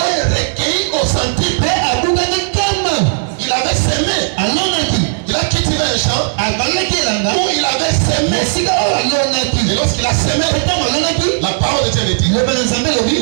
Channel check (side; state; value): left; silent; digital silence